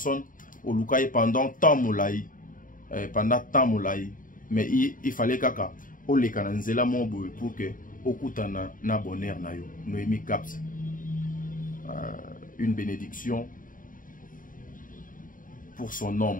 au lukaye pendant temps moulaï, mais il fallait kaka o le kananzela mobo pour que okutana na bonheur na yo. Noémie Caps. Une bénédiction pour son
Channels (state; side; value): late; right; 0.39 ms